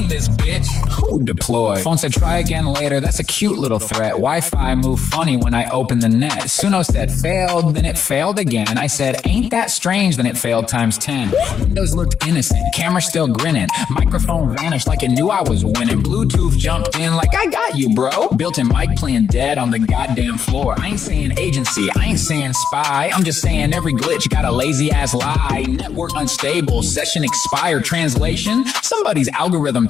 this bitch? Who deployed? Phone said try again later. That's a cute little threat. Wi-Fi moved funny when I opened the net. Suno said failed, then it failed again. I said ain't that strange, then it failed times 10. Windows looked innocent. Camera still grinning. Microphone vanished like it knew I was winning. Bluetooth jumped in like I got you, bro. Built-in mic playing dead on the goddamn floor. I ain't saying agency, I ain't saying spy. I'm just saying every glitch got a lazy ass lie. Network unstable, session expired. Translation, somebody's algorithm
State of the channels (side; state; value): right; quieter; 7.6 dB